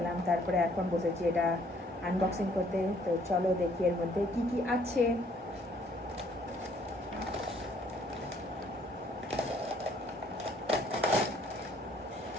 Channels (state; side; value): normal; both; correlation 0.63